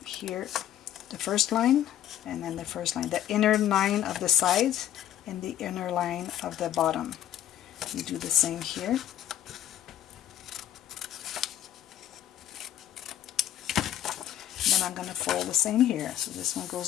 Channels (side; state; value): right; quieter; 11.7 dB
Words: here, the first line, and then the first line, the inner line of the sides and the inner line of the bottom. You do the same here. And then I'm going to fold the same here. So this one